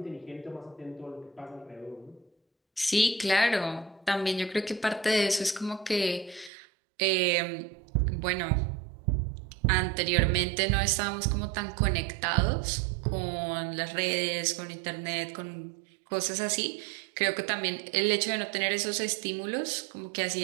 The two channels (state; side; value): drops out; left; at 6.5 s